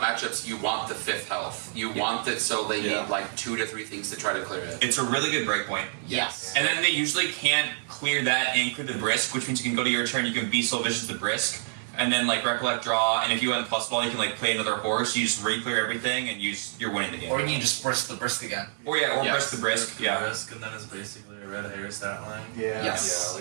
you want the 5th health. You want it so they need like 2 to 3 things to try to clear it. it's a really good breakpoint. Yes. And then they usually can't clear that and clear the Brisk, which means you can go to your turn, you can be so vicious the Brisk, and then like Recollect draw, and if you have plus ball, you can like play another horse, you just re-clear everything, and you're winning the game. Or you can just brisk the brisk again. Or Brisk the Brisk, yeah. Risk, and then it's basically a red hair stat line. Yeah. Yes. Yeah,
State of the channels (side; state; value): left; silent; digital silence